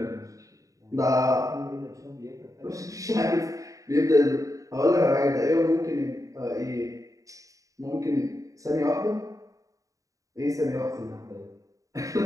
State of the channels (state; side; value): late; left; 0.16 ms